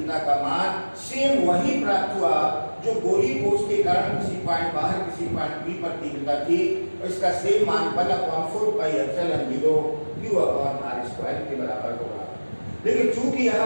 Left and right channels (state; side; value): inverted; both; correlation -1.00